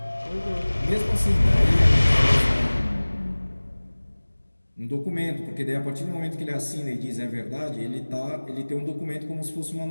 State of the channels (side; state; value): both; inverted; correlation -1.00